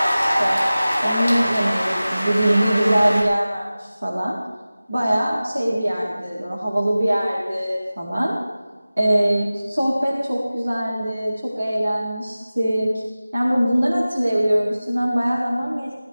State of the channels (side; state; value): both; inverted; correlation -0.97